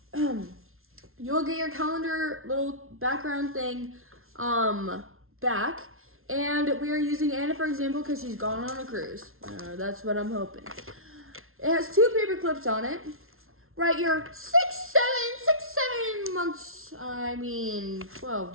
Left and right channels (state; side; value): late; left; 0.61 ms